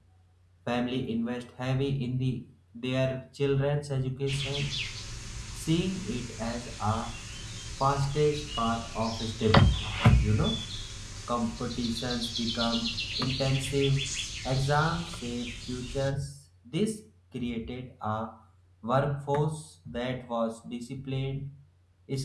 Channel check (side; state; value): both; identical; correlation 1.00